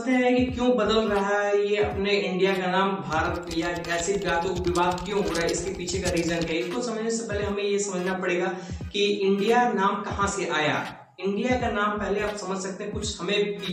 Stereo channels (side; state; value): both; identical; correlation 1.00